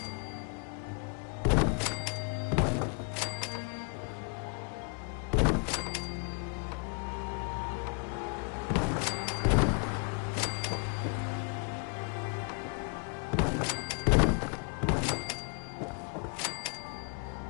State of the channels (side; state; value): right; quieter; 37.9 dB